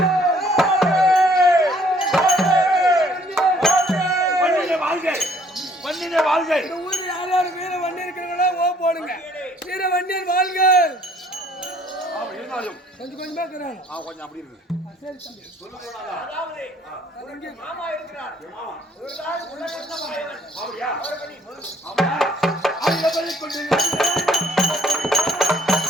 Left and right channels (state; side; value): normal; both; correlation 0.61